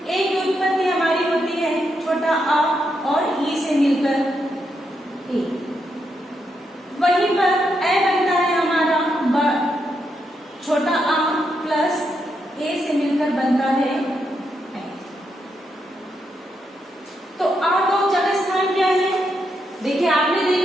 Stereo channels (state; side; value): normal; both; correlation 0.81